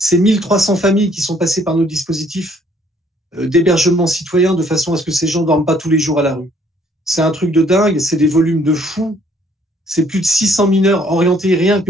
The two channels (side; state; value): both; normal; correlation 0.63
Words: 1300 familles qui sont passées par nos dispositifs d'hébergement citoyen de façon à ce que ces gens ne dorment pas tous les jours à la rue. C'est un truc de dingue, c'est des volumes de fous. C'est plus de 600 mineurs orientés rien que